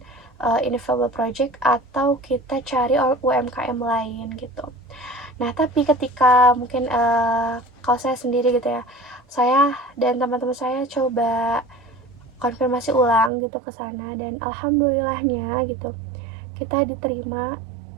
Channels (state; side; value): drops out; left; at 13.3 s